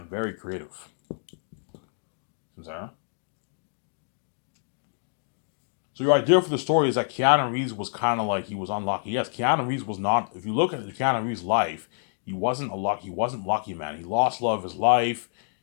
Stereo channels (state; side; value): silent; right; digital silence